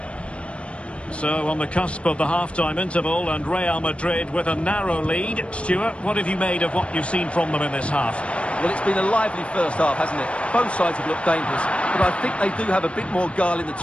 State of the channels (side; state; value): right; late; 0.060 ms